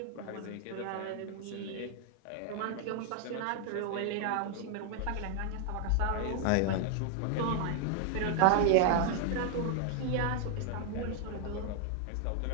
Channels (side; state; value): both; different; correlation 0.00